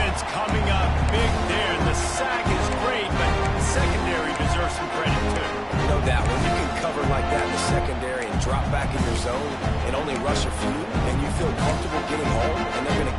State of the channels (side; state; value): both; identical; correlation 1.00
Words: coming up big there. The sack is great, but the secondary deserves some credit, too. No doubt. When you can cover like that in the secondary and drop back in your zone and only rush a few, and you feel comfortable getting home, and they're going to